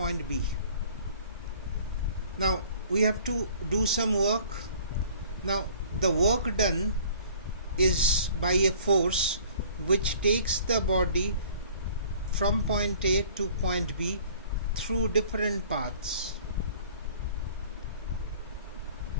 B. Now we have to do some work. Now the work done is by a force which takes the body from point A to point B through different paths.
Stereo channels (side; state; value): both; inverted; correlation -0.51